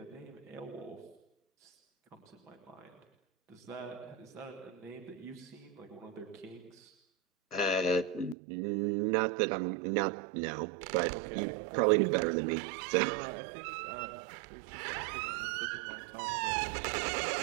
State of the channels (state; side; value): drops out; left; at 8.3 s